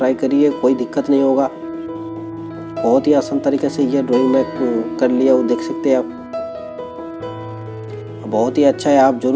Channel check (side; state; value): both; identical; correlation 1.00